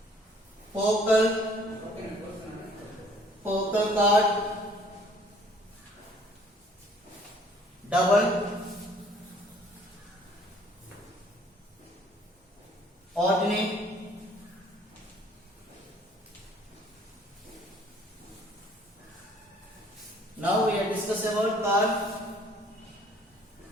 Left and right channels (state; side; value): normal; both; correlation 0.58